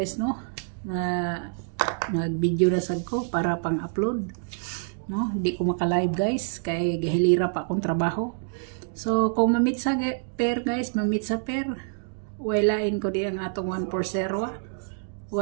no? Mag-video na sad ko para pang-upload, no? Di ko maka-live guys kay gahilira pa akong trabaho. So kung mamit sa pair guys, mamit sa pair, wailain ko di ang atong 140,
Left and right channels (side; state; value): left; silent; 60 dB below the other